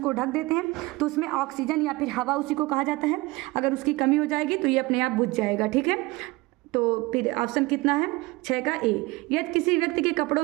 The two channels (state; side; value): quieter; left; 22.1 dB